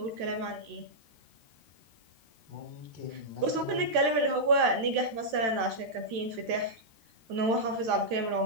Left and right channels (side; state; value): left; late; 13 ms